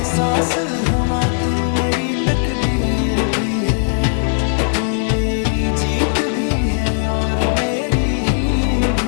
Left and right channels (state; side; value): silent; right; digital silence